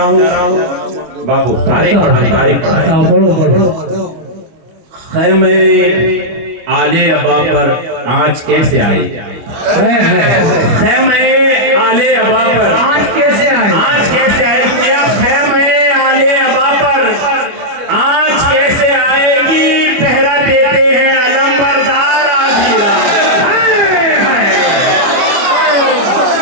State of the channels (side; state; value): left; late; 25 ms